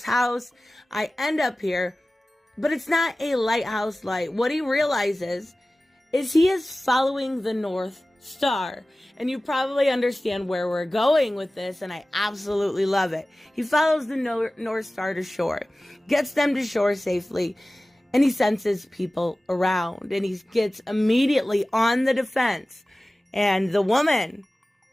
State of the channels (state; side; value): normal; both; correlation 0.97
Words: house. I end up here, but it's not a lighthouse light. What he realizes is he is following the North Star. And you probably understand where we're going with this, and I absolutely love it. He follows the North Star to shore, gets them to shore safely, and he senses people around, and he gets immediately on the defense. And the woman,